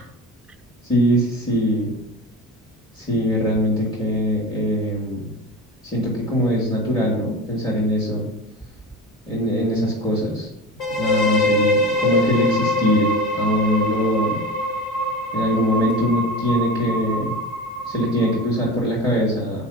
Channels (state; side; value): normal; both; correlation 0.30